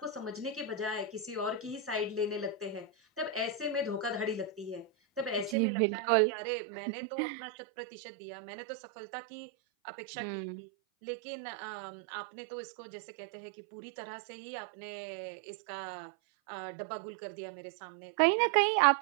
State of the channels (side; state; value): left; drops out; at 5.6 s